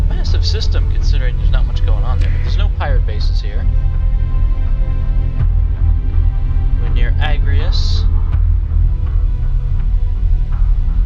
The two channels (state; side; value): identical; both; correlation 1.00